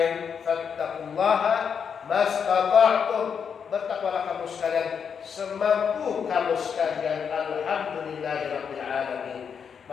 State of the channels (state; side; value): quieter; right; 6.9 dB